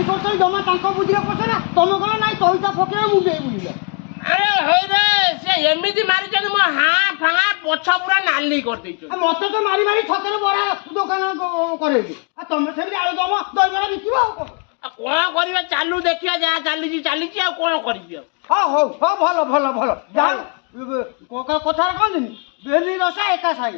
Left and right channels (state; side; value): quieter; right; 36.5 dB